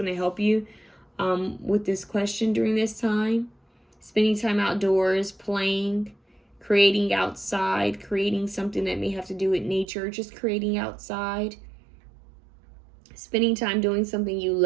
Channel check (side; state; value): left; drops out; at 9.9 s